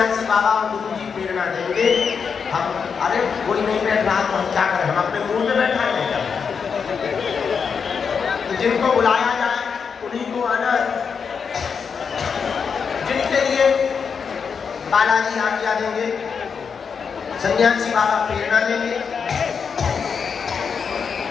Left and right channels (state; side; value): quieter; right; 6.1 dB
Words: बाबा और गुरु जी प्रेरणा देंगे, हम अरे कोई नहीं बैठ रहा तो हम क्या करें, हम अपने मुंह में बैठा नहीं। तो जिनको बुलाया जाए उन्हीं को आना है। जिनके लिए बालाजी आज्ञा देंगे, सन्यासी बाबा प्रेरणा देंगे,